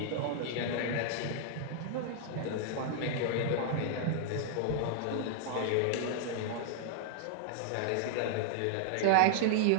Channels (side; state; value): both; different; correlation -0.01